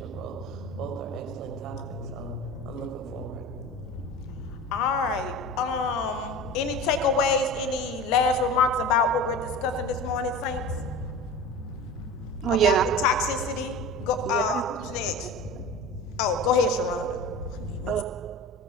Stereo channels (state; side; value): normal; both; correlation 0.34